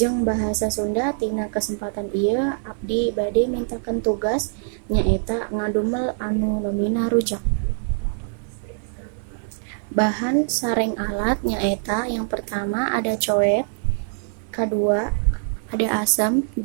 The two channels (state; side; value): silent; left; digital silence